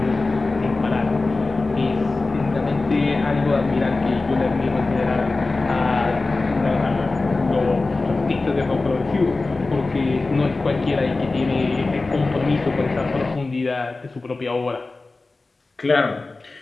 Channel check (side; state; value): right; quieter; 3.5 dB